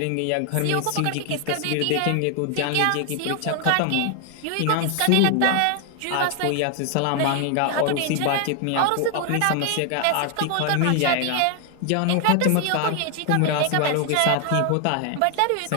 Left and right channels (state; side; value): different; both; correlation 0.00